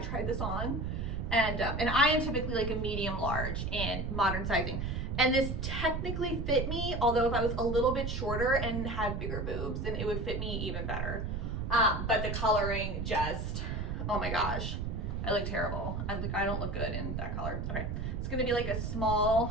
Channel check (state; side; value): noise; right; rumble, 2 dB below the sound